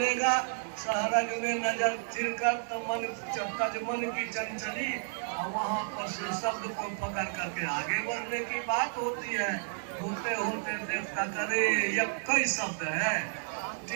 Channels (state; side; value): silent; left; digital silence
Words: सहरग में नजर फिर कर तो मन की चंचली, और वहाँ पर से शब्द को पकड़ करके आगे बढ़ने की बात होती है। होते होते देखता करे ये कई शब्द है।